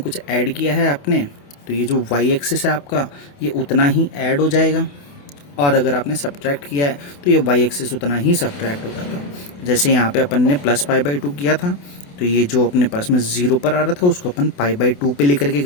कुछ ऐड किया है आपने, तो ये जो वाई एक्सिस है आपका, ये उतना ही ऐड हो जाएगा, और अगर आपने सब्ट्रैक्ट किया है तो ये वाई एक्सिस उतना ही सब्ट्रैक्ट हो जाता। जैसे यहाँ पे अपन ने प्लस π/2 किया था, तो ये जो अपने पास में 0 पर आ रहा था उसको अपन π/2 पे लेकर के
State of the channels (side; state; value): right; late; 28 ms